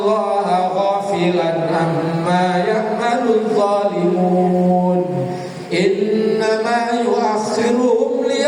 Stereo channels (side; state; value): both; identical; correlation 1.00